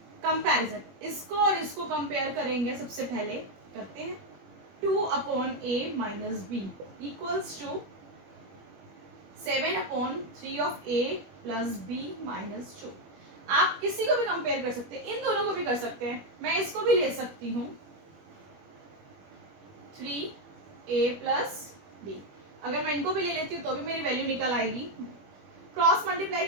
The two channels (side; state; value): left; late; 21 ms